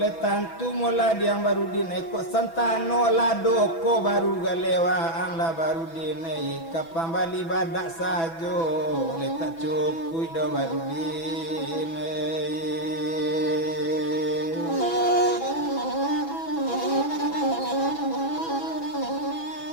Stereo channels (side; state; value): right; late; 6.0 ms